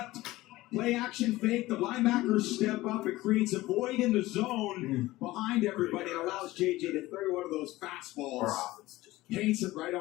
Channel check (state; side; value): quieter; right; 18.0 dB